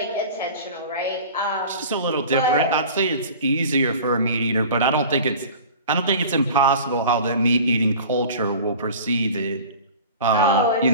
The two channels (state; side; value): inverted; both; correlation -0.40